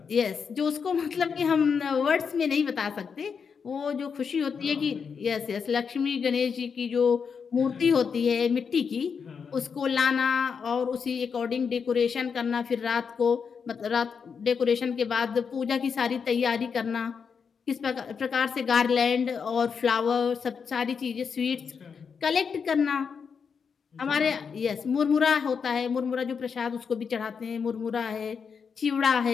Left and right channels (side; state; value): right; quieter; 6.2 dB